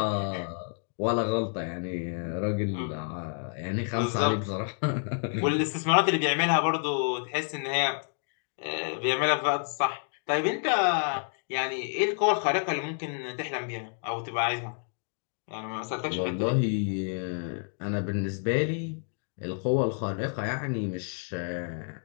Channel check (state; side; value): silent; right; 58 dB below the other